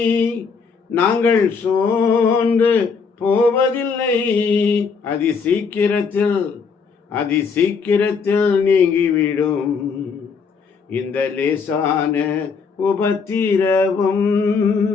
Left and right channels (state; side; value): quieter; right; 5.4 dB